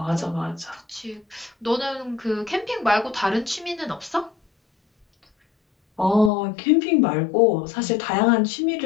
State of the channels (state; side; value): drops out; right; at 6.3 s